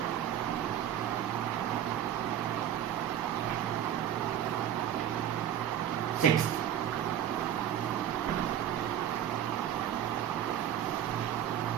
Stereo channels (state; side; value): quieter; left; 10.4 dB